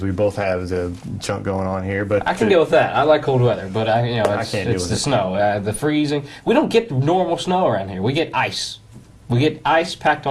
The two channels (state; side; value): identical; both; correlation 1.00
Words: we both have the junk going on here. But I can deal with that. I like cold weather, but I can't deal it's with the it. snow, the freezing. We don't get normal snow around here. We get ice. We get ice packed